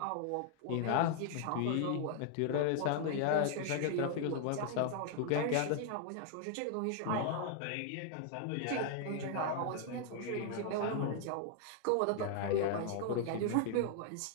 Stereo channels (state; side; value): different; both; correlation 0.00